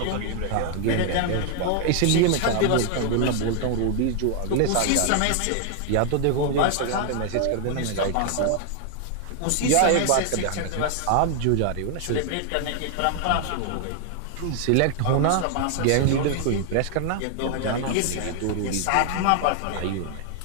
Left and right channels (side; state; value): both; different; correlation 0.00